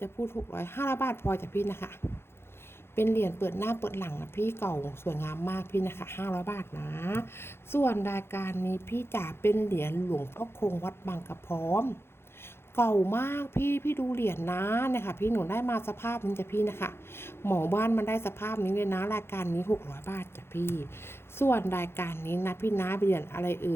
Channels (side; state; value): right; late; 0.12 ms